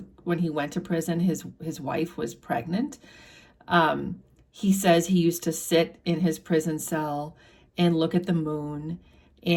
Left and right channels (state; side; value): identical; both; correlation 1.00